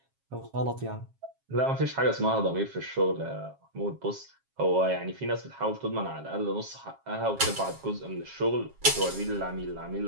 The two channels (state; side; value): late; left; 7.4 ms